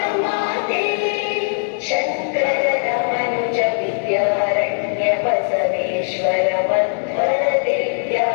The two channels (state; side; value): silent; right; digital silence